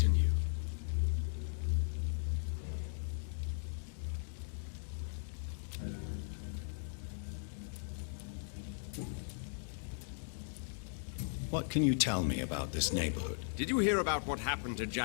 you. What can you tell me about this neighborhood? Did you hear about what happened to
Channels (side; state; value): right; silent; digital silence